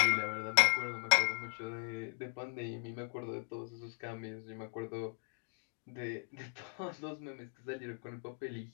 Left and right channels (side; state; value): right; silent; 52 dB below the other